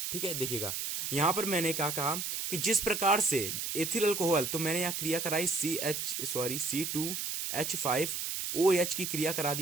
ठीक है। देखिएगा यहां पर मैंने क्या कहा कि जिस प्रकार से एथिल अल्कोहल, तो मैंने यहां क्रिया कराई C2H5OH की क्रिया करा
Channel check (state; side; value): noise; right; hiss, 3 dB below the sound